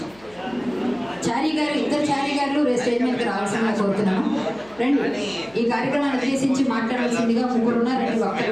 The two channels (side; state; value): left; noise; hum, 28 dB below the sound